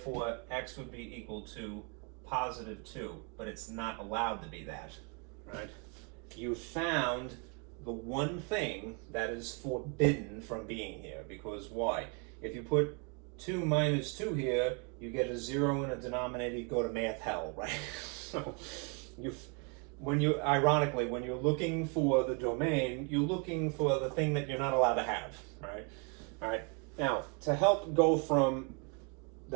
x would be equal to positive 2, but it's not allowed to be that, right? You found the one thing that is forbidden from being here, because why? If you put 2 minus 2 here, you get a 0 in a denominator, you go to math hell, right? So ironically, when you're looking for the domain, you're looking for the thing that you're not allowed to have, right? All right. Now, to help go from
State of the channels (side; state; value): left; quieter; 35.0 dB